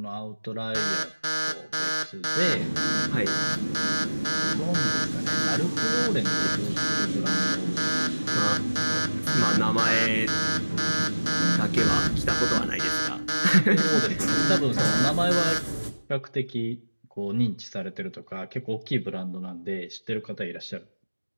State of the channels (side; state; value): both; inverted; correlation -1.00